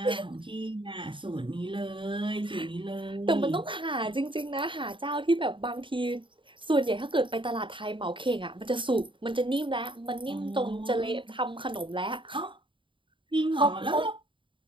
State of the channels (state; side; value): late; left; 0.24 ms